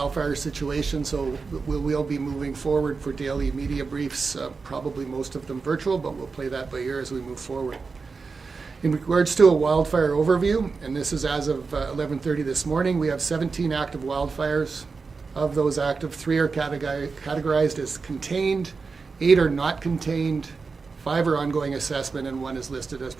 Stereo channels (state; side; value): quieter; left; 4.6 dB